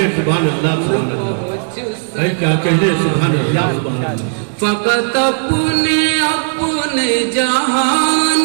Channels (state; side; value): silent; left; digital silence